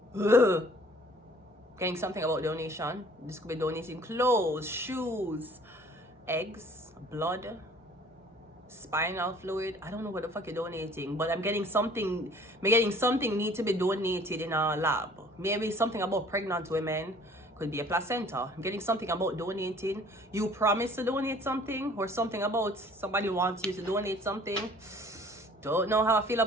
Ugh. Getting something about donation. This could be donating clothes, shoes, eggs, blood, spinal fluid. I don't know what the fuck you're donating, but I'm getting something. I'm getting something need to be donated in our lab. Maybe something about pregnant women. Could be a placenta. I'm getting something about donating. You promise to donate something, or something about somebody wants you to donate something. Don't know how I feel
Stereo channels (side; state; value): both; normal; correlation 0.53